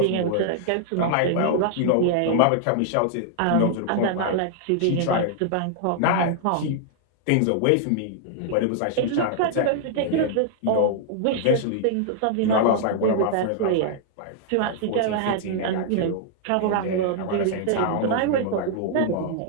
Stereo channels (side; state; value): both; different; correlation -0.01